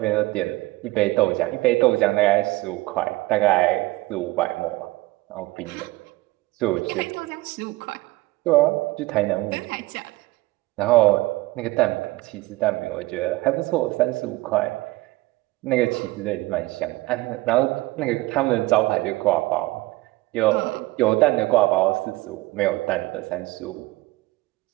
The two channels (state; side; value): quieter; left; 20.1 dB